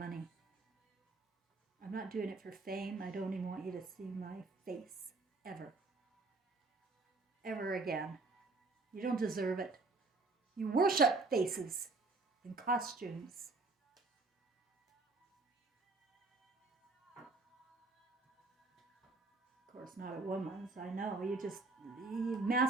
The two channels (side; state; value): left; quieter; 3.6 dB